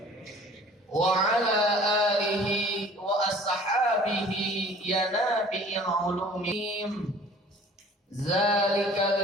wa ala alihi wa ashabihi ya nabi'il ulumim.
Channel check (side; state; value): both; normal; correlation 0.49